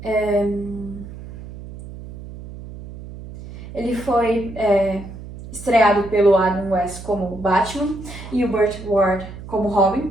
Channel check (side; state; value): right; noise; hum, 13 dB below the sound